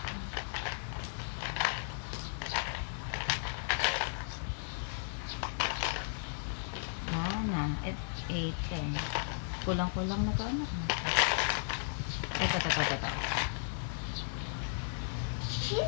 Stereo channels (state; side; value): silent; right; digital silence